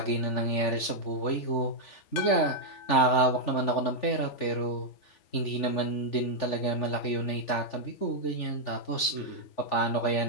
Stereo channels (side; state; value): right; late; 3.4 ms